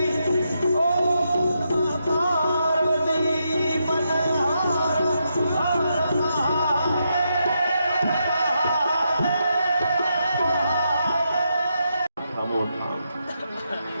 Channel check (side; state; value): both; inverted; correlation -0.82